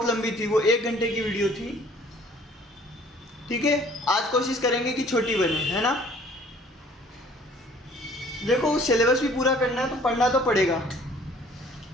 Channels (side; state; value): both; normal; correlation 0.55